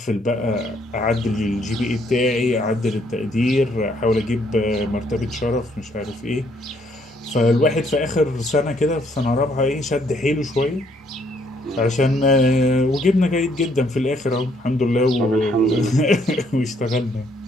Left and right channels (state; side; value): normal; both; correlation 0.68